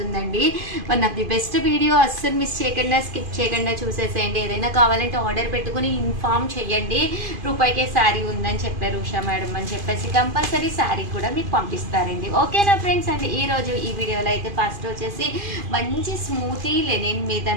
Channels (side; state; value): left; late; 2.5 ms